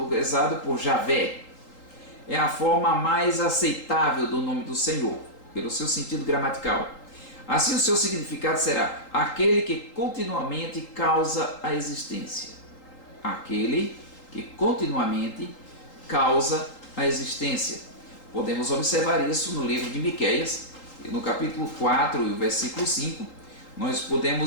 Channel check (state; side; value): late; right; 3.8 ms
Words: por Javé, é a forma mais aceitável do nome do Senhor, pelo seu sentido gramatical. Assim, o seu significado será aquele que continuamente causa a existência. Aquele que continuamente causa a existência. Podemos observar isso no livro de Miqueias, no capítulo 4 e o versículo 5. Nós